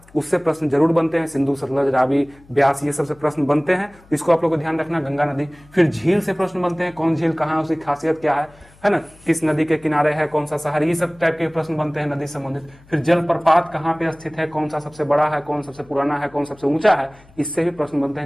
उससे प्रश्न जरूर बनते हैं, सिंधु, सतलज, रावी, ब्यास, ये सब से प्रश्न बनते हैं, इसको आप लोग को ध्यान रखना। गंगा नदी, फिर झील से प्रश्न बनते हैं, कौन झील कहाँ है, उसकी खासियत क्या है ना, किस नदी के किनारे है, कौन सा शहर, ये सब टाइप के प्रश्न बनते हैं नदी संबंधित। फिर जलप्रपात कहाँ पे स्थित है, कौन सा सबसे बड़ा है, कौन सबसे पुराना है, कौन सबसे ऊंचा है, इससे भी प्रश्न बनते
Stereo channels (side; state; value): left; noise; hum, 27 dB below the sound